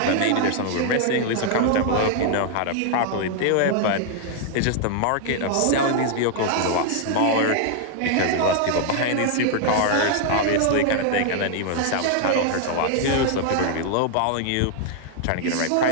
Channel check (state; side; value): different; both; correlation 0.00